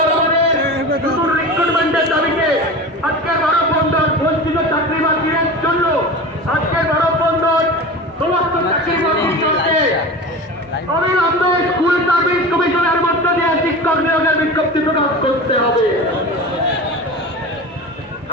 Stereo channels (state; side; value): normal; both; correlation 0.31